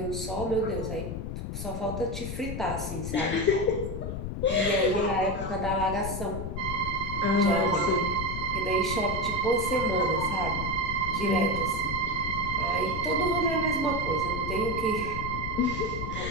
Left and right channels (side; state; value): left; noise; rumble, 5 dB below the sound